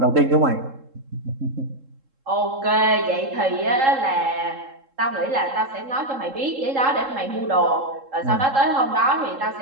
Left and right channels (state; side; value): late; left; 3.7 ms